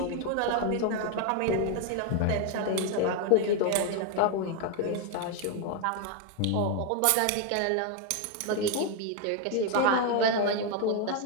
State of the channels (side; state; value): both; different; correlation 0.00